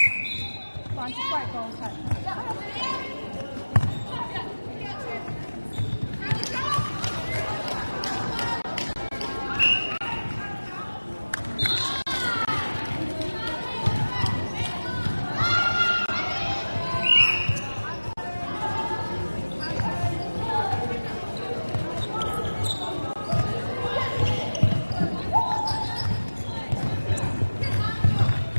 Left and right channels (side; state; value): both; inverted; correlation -1.00